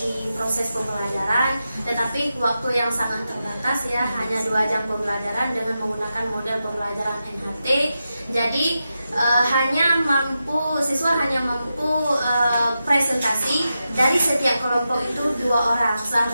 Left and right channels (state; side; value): inverted; both; correlation -0.89